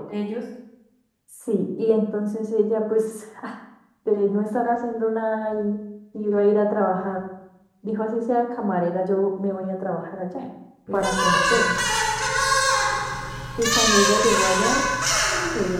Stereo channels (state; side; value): identical; both; correlation 1.00